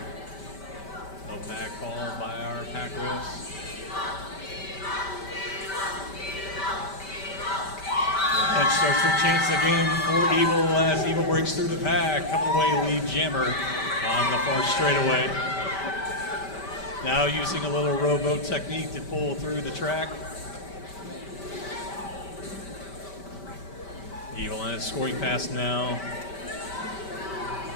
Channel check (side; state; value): right; late; 5.1 ms